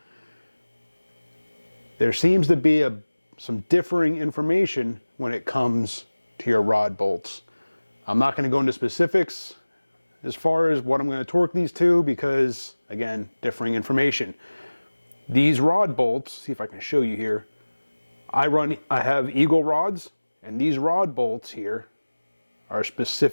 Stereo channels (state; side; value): inverted; both; correlation -1.00